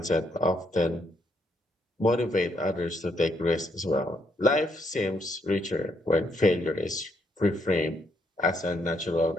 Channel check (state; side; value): normal; both; correlation 0.74